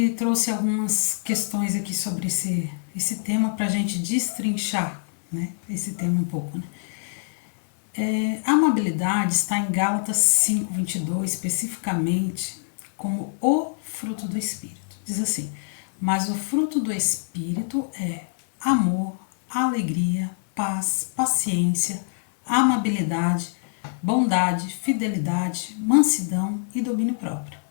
trouxe algumas questões aqui sobre esse tema para a gente destrinchar, né? Esse tema um pouco, né? A amabilidade está em Gálatas 5:22, especificamente como o fruto do Espírito. Diz assim: mas o fruto do Espírito é amor, alegria, paz, paciência, amabilidade, bondade, fidelidade, mansidão e domínio próprio.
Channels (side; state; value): right; silent; 58 dB below the other